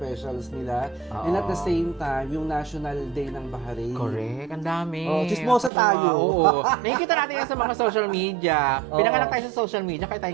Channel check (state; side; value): drops out; left; at 5.7 s